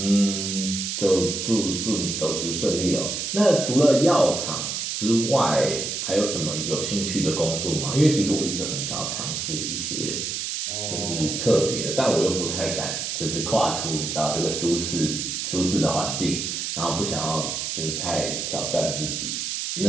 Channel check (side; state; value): right; noise; hiss, 3 dB below the sound